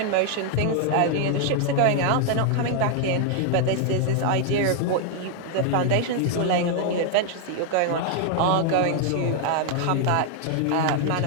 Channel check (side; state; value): both; different; correlation 0.00